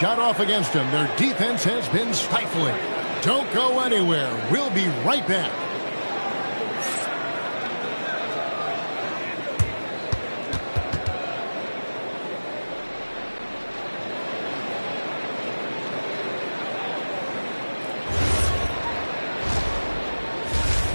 off against them. Their defense has been stifling. Don't go anywhere. We'll be right back.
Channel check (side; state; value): both; inverted; correlation -1.00